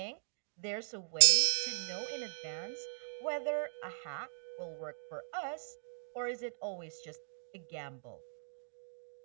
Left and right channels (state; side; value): silent; left; digital silence